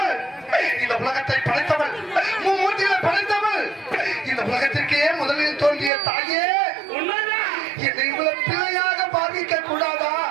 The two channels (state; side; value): drops out; left; at 5.9 s